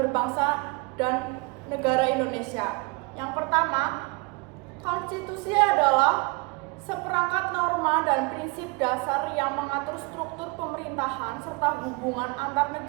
berbangsa dan negara Indonesia. Yang pertama, konstitusi adalah seperangkat norma dan prinsip dasar yang mengatur struktur pemerintahan serta hubungan antar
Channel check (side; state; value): left; quieter; 27.5 dB